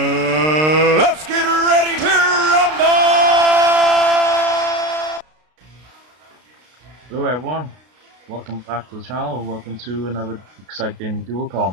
get ready to rumble! Hello everyone, welcome back to the channel, welcome to another exciting dual com.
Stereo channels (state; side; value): late; left; 32 ms